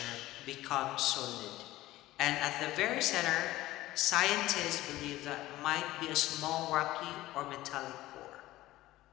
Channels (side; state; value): right; quieter; 16.5 dB